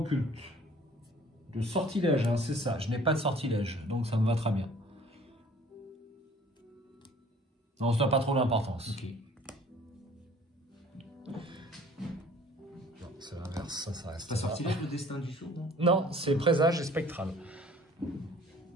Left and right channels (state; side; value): normal; both; correlation 0.52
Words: De sortilège, hein, c'est ça. Je n'ai pas de sortilège, donc ça me va très bien. Non, ça n'a pas trop d'importance. Ok. Non, c'est l'inverse, ça reste. Pas sortilège, le destin du sourd, non? Non, c'est présage et spectral.